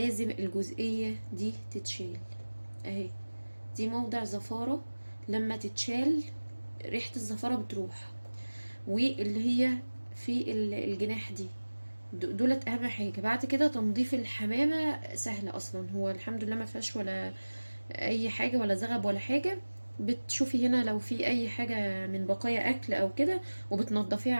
الجزئية دي تتشال اهي. دي موضع زفارة، لما تتشال ريحة الزفارة بتروح. واللي هي في الجناح دي، دولت اهم حاجة. بعد كده تنظيف الحمامة سهل اصلا، هو الحمد لله ما فيهاش ولا اي حاجة ولا زغب ولا حاجة. بتشوفي هنا لو في اي حاجة من بقايا اكل او كده وبتنضفيها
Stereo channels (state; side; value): inverted; both; correlation -1.00